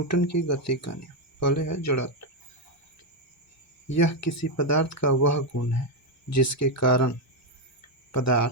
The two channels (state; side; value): normal; both; correlation 0.04